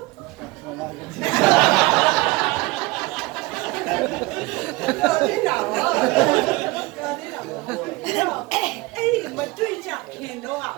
ာနေတာပါအဲ့ဒီမတွေ့ကြခင်တော့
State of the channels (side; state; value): left; quieter; 22.2 dB